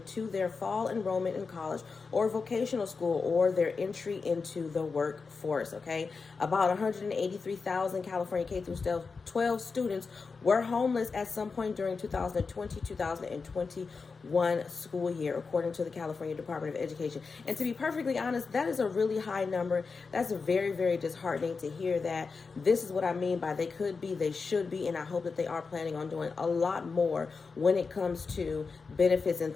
to their fall enrollment in college or vocational school or their entry into the workforce. Okay, about 183,000 California K through 12 students were homeless at some point during 2020-2021 school year, according to the California Department of Education. And to be perfectly honest, that is a really high number. That's very, very disheartening to hear that. This is what I mean by they could be, they should be, and I hope that they are planning on doing a lot more when it comes to benefits and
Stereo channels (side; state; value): right; quieter; 4.7 dB